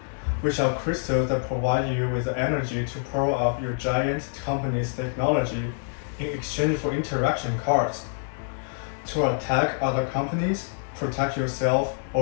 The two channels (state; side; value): silent; right; 61 dB below the other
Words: which are crystals that provide you with the energy to power up your giant company's technology in exchange for interaction cards. To attack other companies, protect yourself,